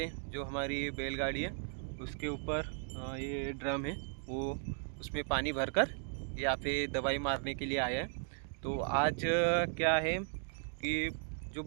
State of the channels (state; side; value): silent; left; 53 dB below the other